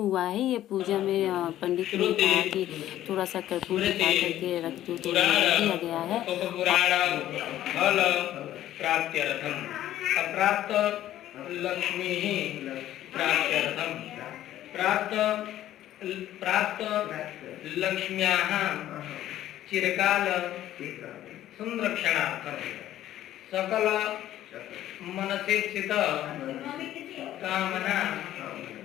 है। ये पूजा में पंडित ने कहा कि थोड़ा सा कर्पूर दिखा करके रख दो, तो दिया गया है। अप्राप्त लक्ष्मी प्राप्त लक्ष्म्याः चिरकाल संरक्षणार्थं सकल मनसेक्षित कामना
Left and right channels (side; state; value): right; quieter; 13.0 dB